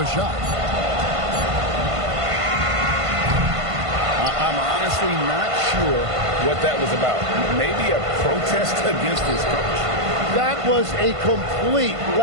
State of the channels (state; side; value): late; left; 1.5 ms